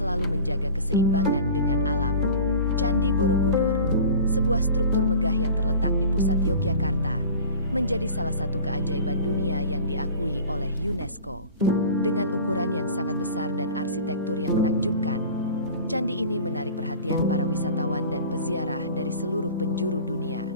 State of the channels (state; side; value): inverted; both; correlation -0.40